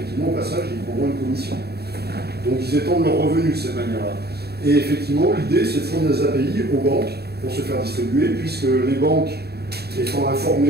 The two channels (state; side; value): late; left; 0.47 ms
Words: au passage ils prendront une commission. Donc ils étendent leurs revenus de cette manière-là. Et effectivement, l'idée, c'est de fournir des API aux banques pour se faire distribuer, puisque les banques, étant